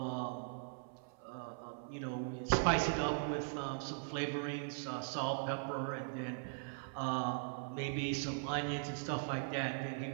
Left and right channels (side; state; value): left; silent; 51 dB below the other